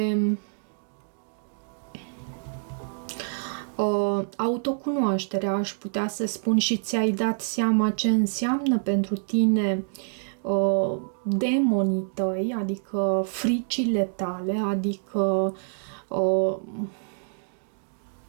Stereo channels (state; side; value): silent; left; digital silence